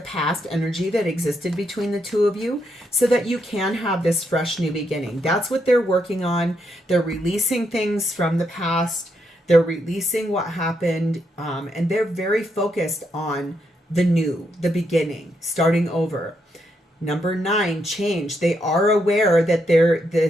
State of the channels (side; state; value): both; normal; correlation 0.79